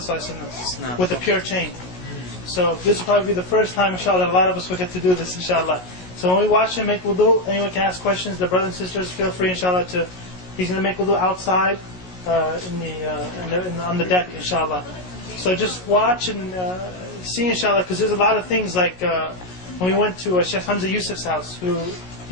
ﷺ, with a pure chain. So this will probably be the first time, inshallah, that a lot of us will get to do this, inshallah. So when we watch him make wudu, anyone can ask questions. The brothers and sisters, feel free, inshallah, to. He's going to make wudu outside, on the deck, inshallah. So just watch and see, inshallah, because there's a lot of things like when we went to Sheikh Hamza Yusuf's house, who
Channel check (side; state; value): right; late; 16 ms